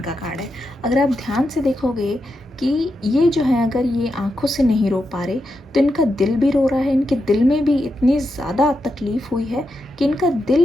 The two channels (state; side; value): normal; both; correlation 0.86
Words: का कार्ड है। अगर आप ध्यान से देखोगे कि ये जो है, अगर ये आंखों से नहीं रो पा रहे तो इनका दिल भी रो रहा है। इनके दिल में भी इतनी ज़्यादा तकलीफ़ हुई है कि इनका